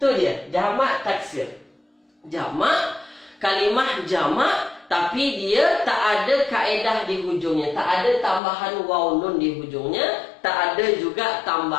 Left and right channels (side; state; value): right; drops out; at 8.4 s